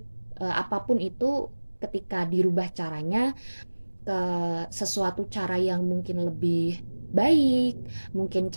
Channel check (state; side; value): inverted; both; correlation -1.00